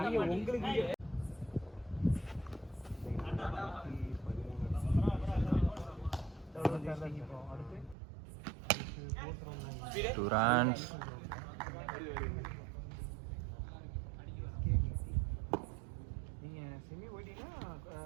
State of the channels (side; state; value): left; drops out; at 8.0 s